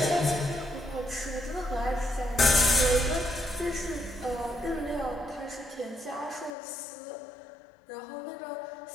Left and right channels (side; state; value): right; drops out; at 6.6 s